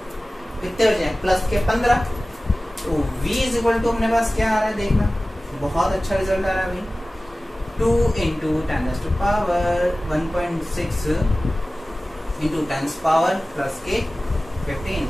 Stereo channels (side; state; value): both; normal; correlation 0.97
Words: कितने हो जाए प्लस के 15। तो v इज इक्वल टू अपने पास क्या आ रहा है देखना, बहुत अच्छा रिजल्ट आ रहा है भाई, 2 इंटू 10⁻1.6 इंटू 10⁻+ के 15।